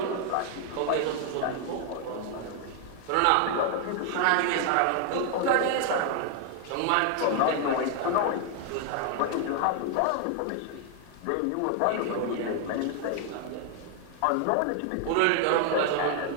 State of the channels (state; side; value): different; both; correlation 0.00